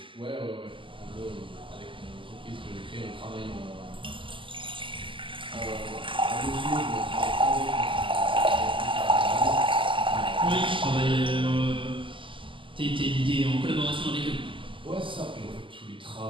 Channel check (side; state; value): left; late; 0.25 ms